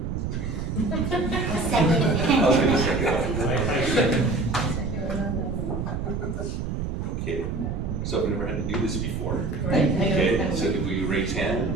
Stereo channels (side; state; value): right; noise; rumble, 3 dB below the sound